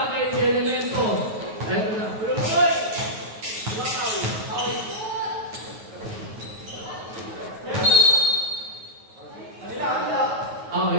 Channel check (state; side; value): late; left; 9.3 ms